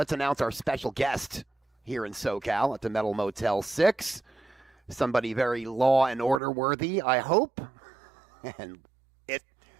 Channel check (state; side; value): drops out; left; at 6.4 s